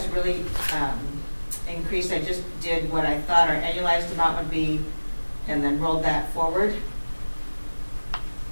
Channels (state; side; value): inverted; both; correlation -1.00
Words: really increased. I just did what I thought our annualized amount would be and then rolled that forward.